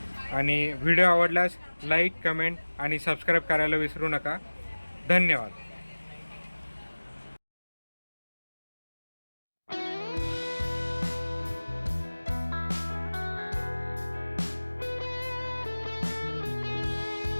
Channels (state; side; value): inverted; both; correlation -1.00